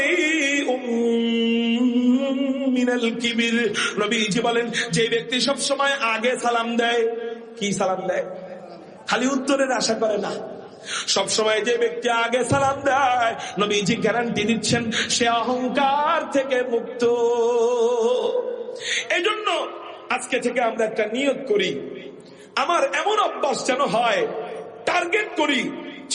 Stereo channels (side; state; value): both; identical; correlation 1.00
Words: মিনাল কিবির। নবীজি বলেন, যে ব্যক্তি সব সময় আগে সালাম দেয়, কি সালাম দেয়? খালি উত্তরের আশা করে না, সব সময় যে ব্যক্তি আগে সালাম দেয়, নবীজি গ্যারান্টি দিচ্ছেন সে অহংকার থেকে মুক্ত। এই জন্য আজকে থেকে আমরা একটা নিয়ত করি, আমার এমন অভ্যাস যেন হয়, টার্গেট করি